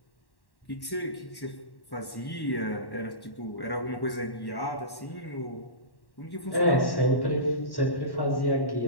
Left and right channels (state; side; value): late; right; 1.1 ms